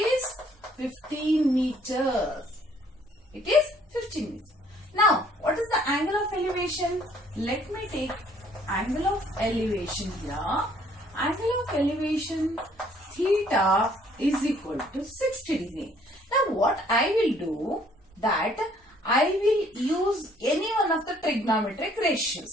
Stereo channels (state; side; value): normal; both; correlation 0.62